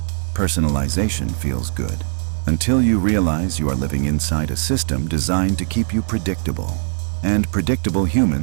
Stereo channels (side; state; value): left; silent; digital silence